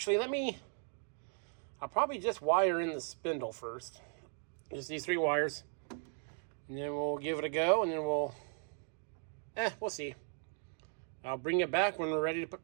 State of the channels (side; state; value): left; silent; 53 dB below the other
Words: I'll probably just wire in the spindle first. Just these 3 wires. And then we'll give it a go, and then we'll see. I'll bring it back when we're ready to put